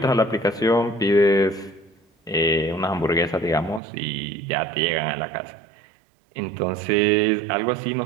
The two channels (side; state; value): left; drops out; at 3.8 s